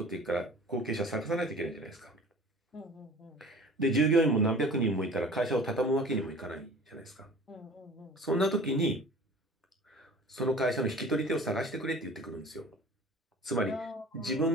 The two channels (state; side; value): normal; both; correlation 0.43